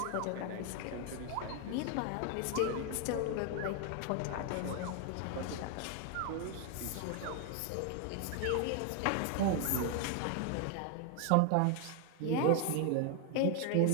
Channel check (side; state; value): both; different; correlation 0.01